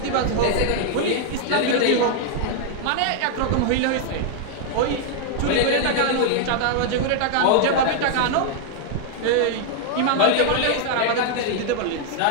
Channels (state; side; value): different; both; correlation 0.00